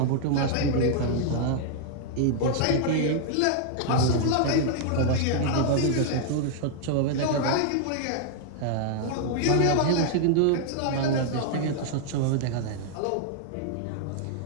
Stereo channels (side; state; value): both; different; correlation -0.01